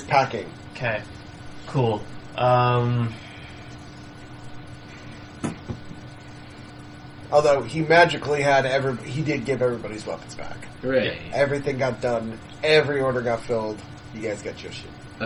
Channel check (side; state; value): both; identical; correlation 1.00